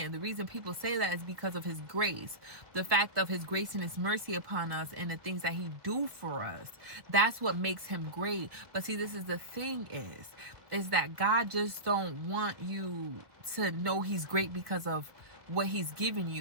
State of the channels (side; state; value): left; late; 1.6 ms